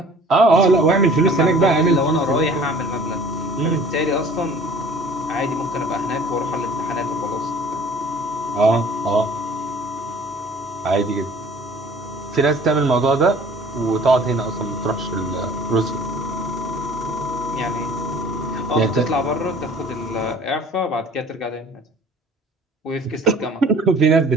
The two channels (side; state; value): both; normal; correlation 0.49